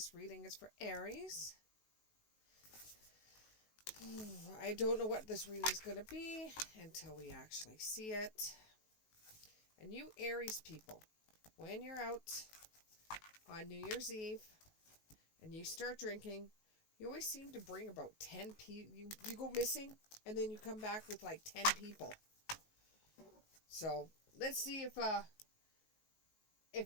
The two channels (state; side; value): late; right; 19 ms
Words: I don't know what this reading is going to be until we actually see it. And you Aries people, when you're out on New Year's Eve and you start drinking, you always seem to bring about 10 people. You go missing and then you come back with like 10 people. So let's see